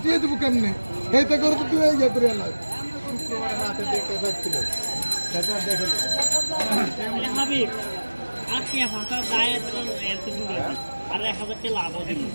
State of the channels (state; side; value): inverted; both; correlation -1.00